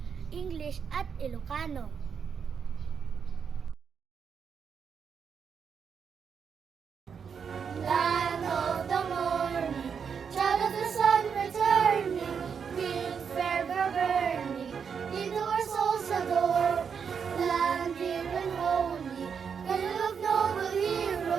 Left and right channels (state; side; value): quieter; left; 6.7 dB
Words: English at Ilocano. Land of the morning, child of the sun returning, with fervor burning, into our souls adore. Land dear and holy, cradle of noble